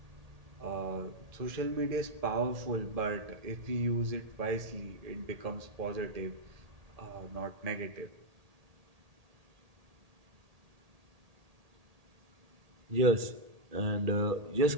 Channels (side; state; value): left; late; 1.8 ms